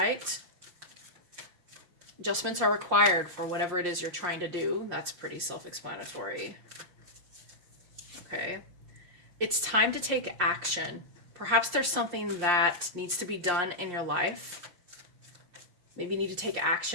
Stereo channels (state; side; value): late; left; 5.7 ms